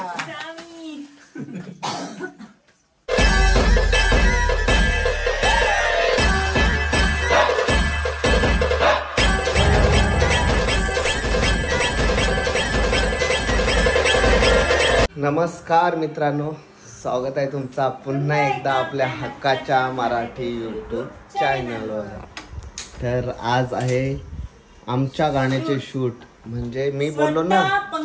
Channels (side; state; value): both; identical; correlation 1.00